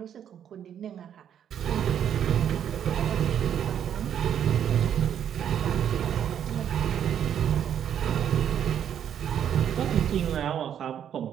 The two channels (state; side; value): quieter; left; 9.3 dB